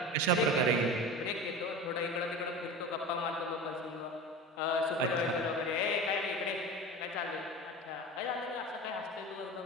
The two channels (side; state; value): both; normal; correlation 0.31